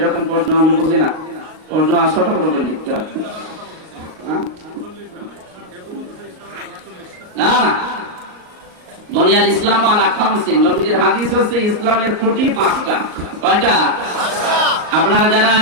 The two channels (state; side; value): late; left; 38 ms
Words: প্রশ্ন আমি বুঝি না। প্রশ্ন ছোট করে লিখতে হয় না। দুনিয়ার ইসলাম আলা খামসিন, নবীজির হাদিস হচ্ছে ইসলামের খুঁটি 5টা। কয়টা? আপনারা যারা